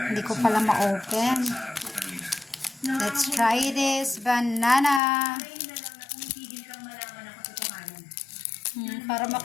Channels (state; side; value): drops out; right; at 5.0 s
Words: ko pala ma-open. Let's try this banana. Para